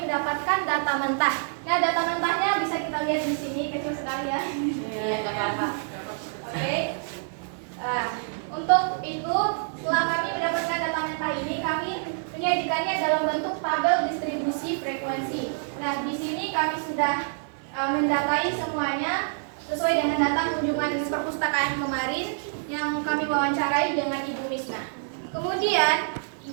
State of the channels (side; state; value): left; silent; digital silence